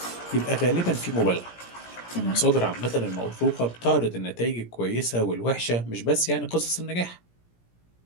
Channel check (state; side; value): late; right; 17 ms